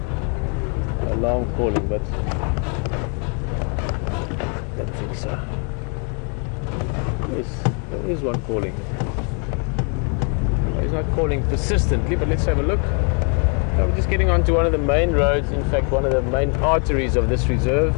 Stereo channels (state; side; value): quieter; right; 39.1 dB